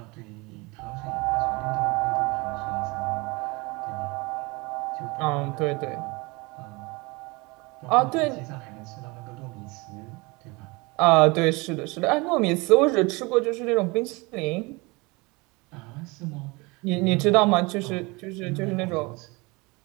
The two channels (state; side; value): quieter; left; 25.6 dB